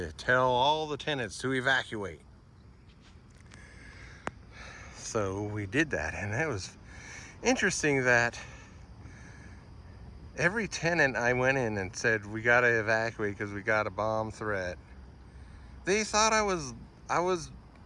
tell all the tenants to evacuate. So we did that, and it was interesting that every tenant I went in and said, "We got to evacuate because we got a bomb threat," they thought I was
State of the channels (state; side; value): identical; both; correlation 1.00